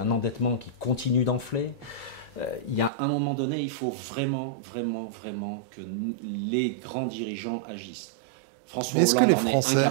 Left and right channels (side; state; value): left; drops out; at 2.9 s